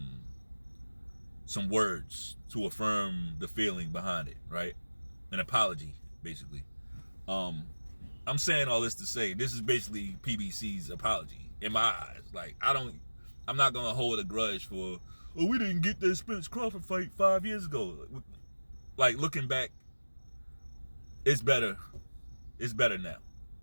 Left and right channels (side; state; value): both; inverted; correlation -1.00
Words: words to affirm the feeling behind it, right? An apology, basically. I'm saying all this to say, this is basically PBC's apology in my eyes. Like, I'm not gonna hold a grudge for, oh, we didn't get that Spence Crawford fight 5 years ago. Like, looking back, it's better. It's better now.